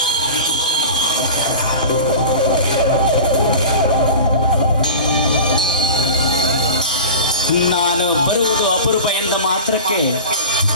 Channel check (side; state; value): both; inverted; correlation -0.33